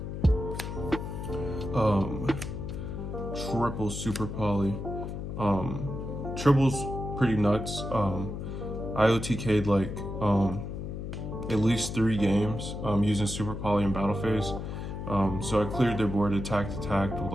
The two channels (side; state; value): left; noise; hum, 6 dB below the sound